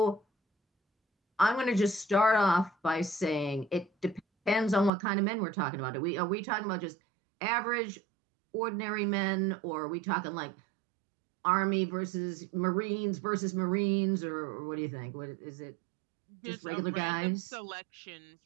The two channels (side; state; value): left; drops out; at 4.9 s